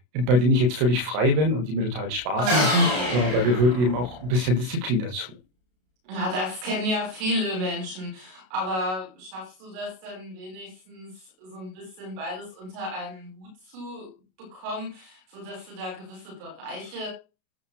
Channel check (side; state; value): left; late; 32 ms